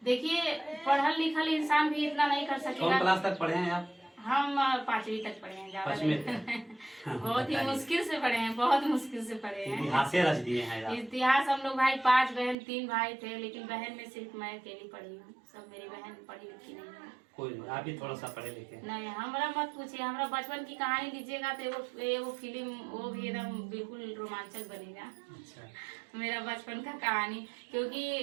देखिए पढ़ल लिखल इंसान भी इतना नहीं कर सकेगा। कौन क्लास तक पढ़े हैं आप? हम 5वीं तक पढ़े हैं, ज्यादा बहुत ही मुश्किल से पढ़े हैं, बहुत मुश्किल से पढ़े हैं। इतिहास रच दिए हैं। इतिहास हम लोग भाई 5 बहन 3 भाई थे, लेकिन बहन में सिर्फ मैं अकेली पढ़ी हूँ, सब मेरी बहन पढ़ी लिखी नहीं है। कोई नहीं, आप ही थोड़ा सा पढ़े लिखे। नहीं, हमारा मत पूछिए, हमारा बचपन की कहानी लीजिएगा तो वो फिल्म वो भी एकदम बिल्कुल रोमांचक बनेगा। अच्छा। मेरा बचपन का कहानी,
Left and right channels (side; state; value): left; drops out; at 12.6 s